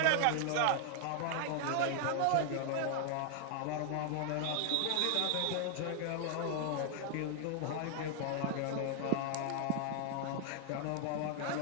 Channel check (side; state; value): both; different; correlation 0.00